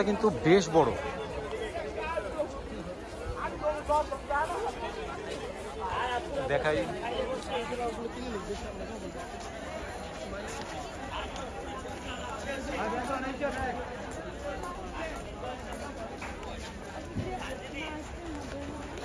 কিন্তু বেশ বড়। দেখাই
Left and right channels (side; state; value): both; identical; correlation 1.00